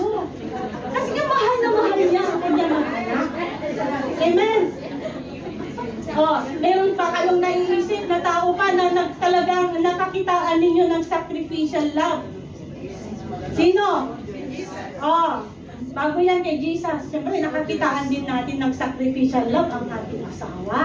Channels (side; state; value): both; identical; correlation 1.00